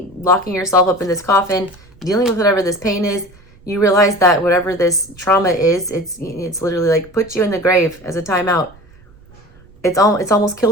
locking yourself up in this coffin, dealing with whatever this pain is. You realize that whatever this trauma is, it's literally like put you in the grave as a timeout. It's almost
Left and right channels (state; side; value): noise; right; rumble, 26 dB below the sound